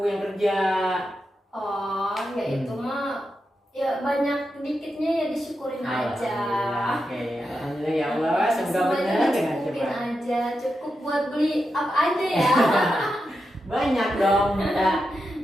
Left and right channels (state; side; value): normal; both; correlation 0.88